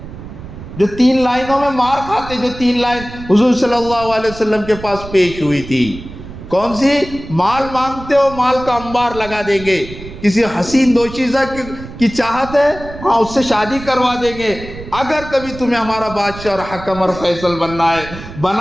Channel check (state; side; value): noise; right; rumble, 13 dB below the sound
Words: جو 3 لائنوں میں مار کھاتے, جو 3 لائن حضور صلی اللہ علیہ وسلم کے پاس پیش ہوئی تھی. کون سی؟ مال مانگتے ہو, مال کا انبار لگا دیں گے. کسی حسین دوشیزہ کی چاہت ہے, ہاں اس سے شادی کروا دیں گے. اگر کبھی تمہیں ہمارا بادشاہ اور حکم اور فیصل بننا ہے